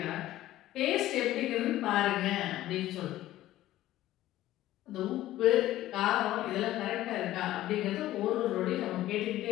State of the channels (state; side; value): quieter; right; 14.7 dB